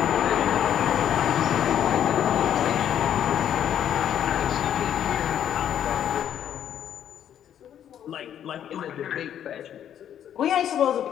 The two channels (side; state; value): right; quieter; 9.9 dB